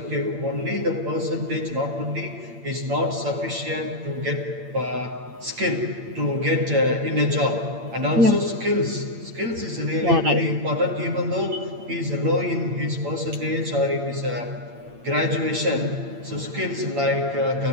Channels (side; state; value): left; late; 8.8 ms